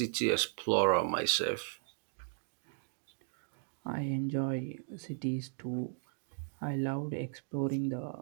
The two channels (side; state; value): left; silent; digital silence